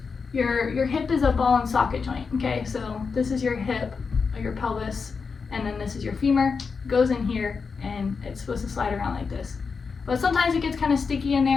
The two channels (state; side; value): quieter; right; 5.2 dB